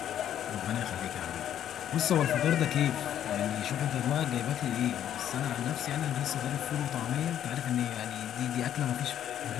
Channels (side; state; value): right; quieter; 10.5 dB